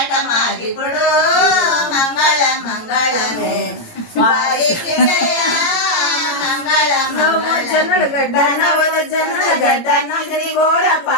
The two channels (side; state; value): right; late; 18 ms